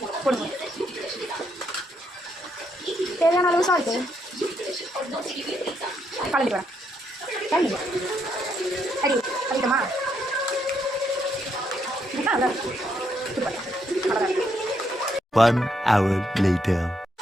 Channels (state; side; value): normal; both; correlation 0.76